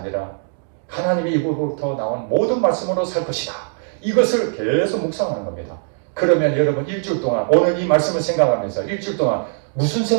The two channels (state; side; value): silent; left; digital silence